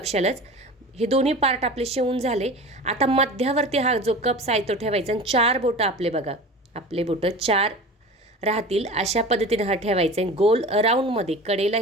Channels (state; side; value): normal; both; correlation 0.35